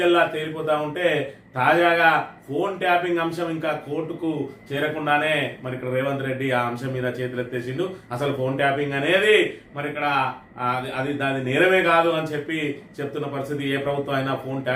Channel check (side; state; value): both; identical; correlation 1.00